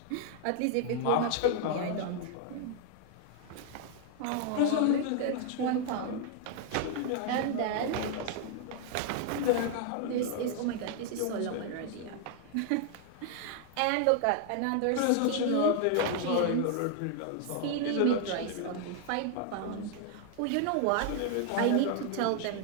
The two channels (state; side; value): different; both; correlation 0.00